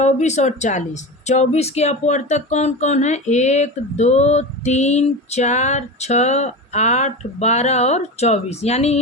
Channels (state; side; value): normal; both; correlation 0.25